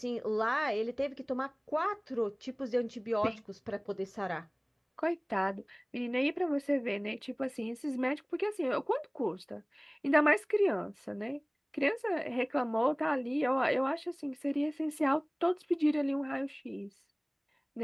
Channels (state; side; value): identical; both; correlation 1.00